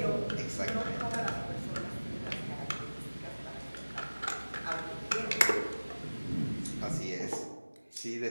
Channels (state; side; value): inverted; both; correlation -1.00